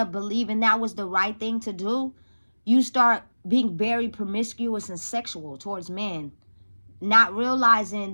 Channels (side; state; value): both; inverted; correlation -1.00